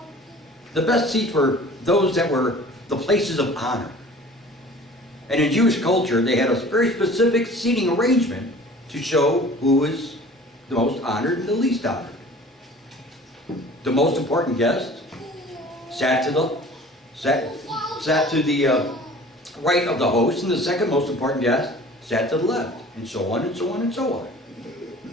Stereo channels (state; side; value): normal; both; correlation 0.46